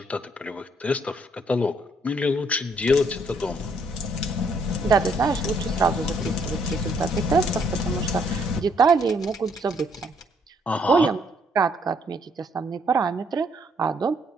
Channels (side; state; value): both; normal; correlation 0.69